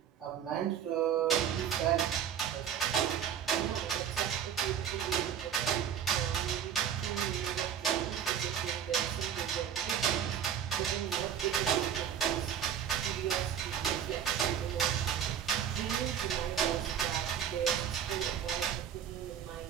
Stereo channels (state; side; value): quieter; left; 8.9 dB